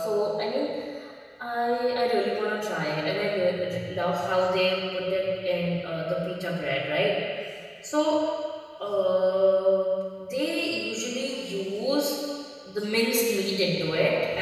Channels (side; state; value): both; identical; correlation 1.00